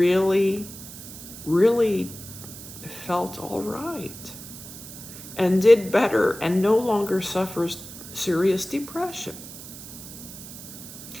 really felt all right and did better and no longer suffers serious depression.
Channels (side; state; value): right; noise; hiss, 14 dB below the sound